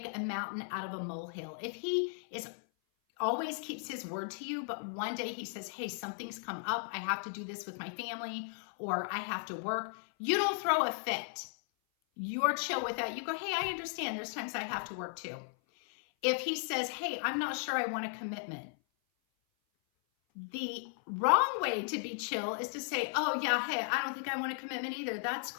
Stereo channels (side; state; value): right; silent; 54 dB below the other